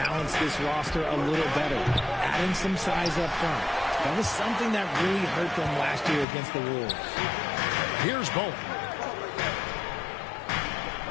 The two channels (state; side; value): drops out; right; at 6.2 s